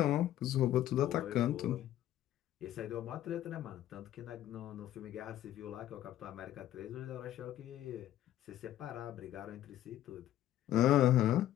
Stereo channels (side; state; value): right; quieter; 12.8 dB